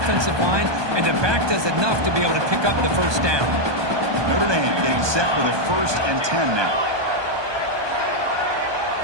line, and the back does enough to be able to pick up the first down. Notre Dame getting set for the 1st and 10 now.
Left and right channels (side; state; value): left; late; 1.2 ms